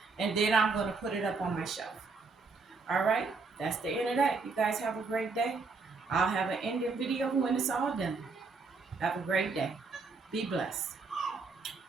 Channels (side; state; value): left; quieter; 4.3 dB